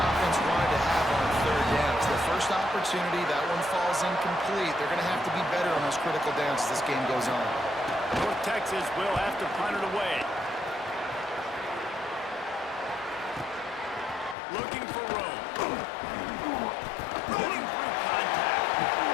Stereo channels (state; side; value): drops out; right; at 14.4 s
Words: wanted to have on third down. It's their first opportunity. That one falls incomplete. They're going to have to be better on those critical downs as this game goes on. North Texas will have to punt it away. Looking for room. Running through contact.